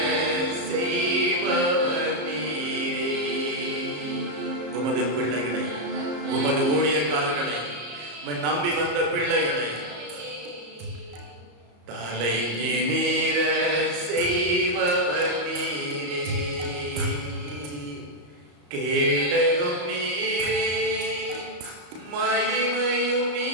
செய்பவர் நீரே. உமது பிள்ளைகளை, உமது ஊழியக்காரர்களை, நம்பி வந்த பிள்ளைகளை தலை நிமிர செய்பவர் நீரே. கேடகம் நீரே, மகிமையும்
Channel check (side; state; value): left; late; 34 ms